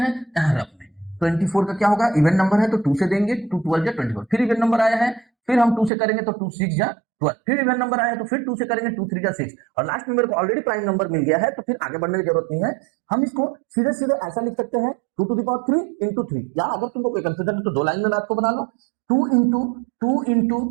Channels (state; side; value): drops out; left; at 5.9 s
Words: यहां रख में 24 का क्या होगा, इवन नंबर है तो 2 से देंगे, 2 12 जा 24, फिर इवन नंबर आया है, फिर हम 2 से करेंगे तो 2 6 जा 12, फिर इवन नंबर आया तो फिर 2 से करेंगे 2 3 जा 6, और लास्ट में मेरे को ऑलरेडी प्राइम नंबर मिल गया है तो फिर आगे बढ़ने की जरूरत नहीं है। हम इसको सीधे सीधे ऐसा लिख सकते हैं 2 to the power 3 into 3, या अगर तुमको कोई कंफ्यूजन है तो 2 लाइन में मैथ को बना लो। 2